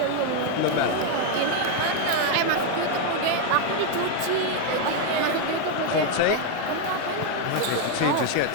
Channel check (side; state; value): both; different; correlation 0.01